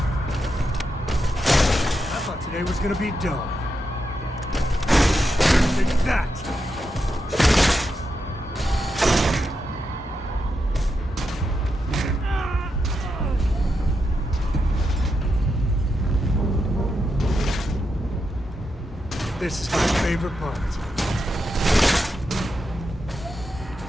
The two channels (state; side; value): normal; both; correlation 0.85